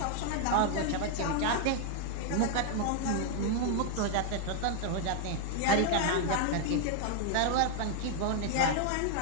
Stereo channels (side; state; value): both; different; correlation 0.00